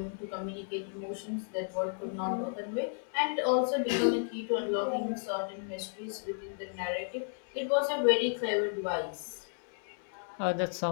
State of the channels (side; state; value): right; silent; 56 dB below the other